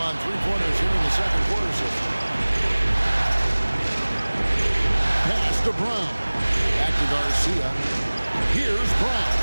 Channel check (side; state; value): both; inverted; correlation -1.00